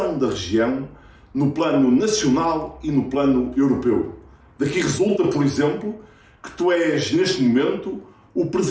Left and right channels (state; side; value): identical; both; correlation 1.00